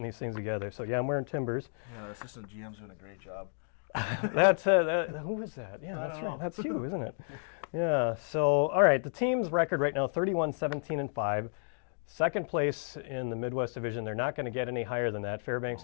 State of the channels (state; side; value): silent; right; digital silence